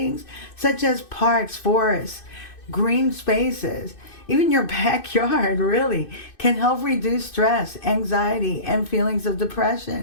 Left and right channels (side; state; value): right; late; 2.6 ms